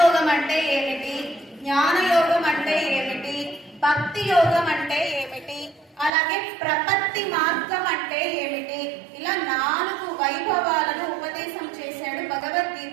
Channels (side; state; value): left; drops out; at 6.1 s